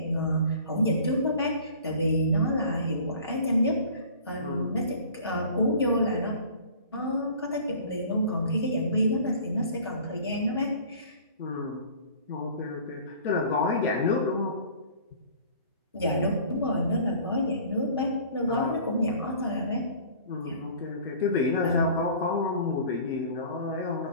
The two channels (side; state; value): both; inverted; correlation -0.46